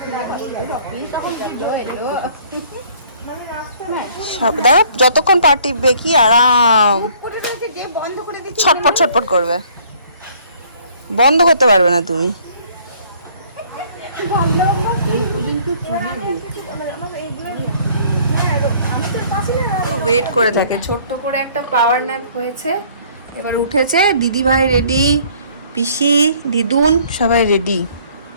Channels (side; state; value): both; inverted; correlation -0.57